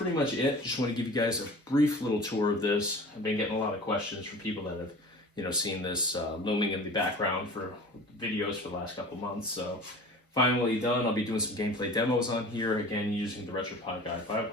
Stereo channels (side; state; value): both; normal; correlation 0.40